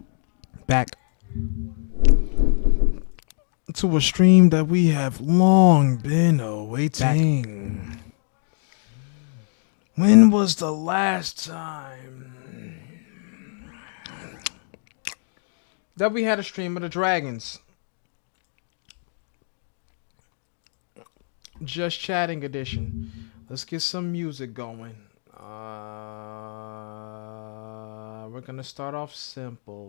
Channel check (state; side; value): silent; right; digital silence